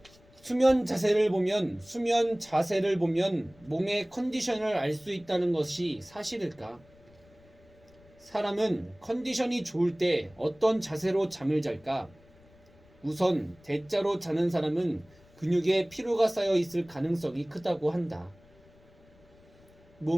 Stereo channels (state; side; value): noise; left; rumble, 28 dB below the sound